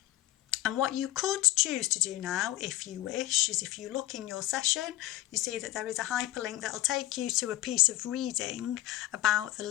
And what you could choose to do now, if you wish, is if you look in your session, you see that there is a hyperlink that will take you to a piece of reading about the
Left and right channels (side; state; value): right; quieter; 15.6 dB